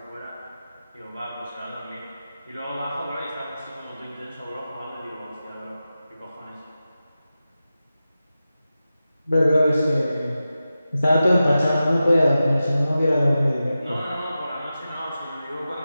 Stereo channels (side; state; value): both; inverted; correlation -0.93